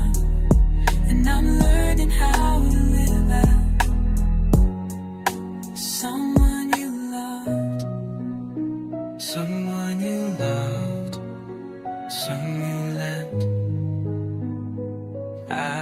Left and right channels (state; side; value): identical; both; correlation 1.00